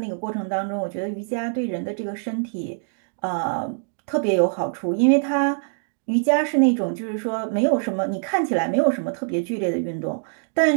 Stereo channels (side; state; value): left; silent; digital silence